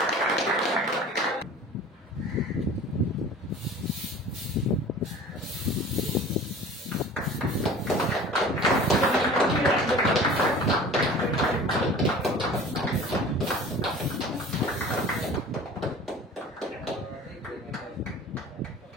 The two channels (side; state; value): both; normal; correlation 0.42